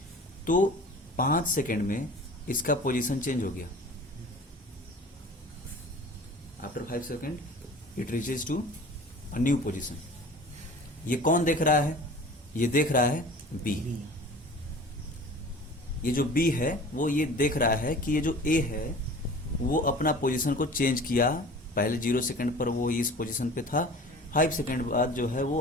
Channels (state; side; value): normal; both; correlation 0.42